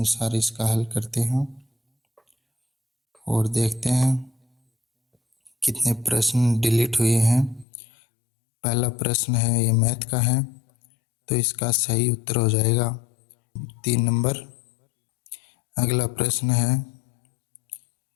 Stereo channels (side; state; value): right; drops out; at 7.7 s